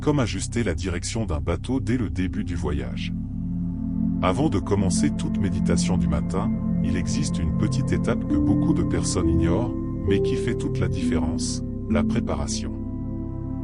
ajuster la direction d'un bateau dès le début du voyage. Avant de commencer toute méditation du matin, il existe une petite étape que beaucoup de personnes ignorent, mais qui fait toute la différence, la préparation.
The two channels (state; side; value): identical; both; correlation 1.00